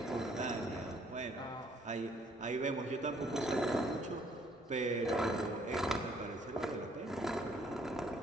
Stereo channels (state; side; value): normal; both; correlation 0.64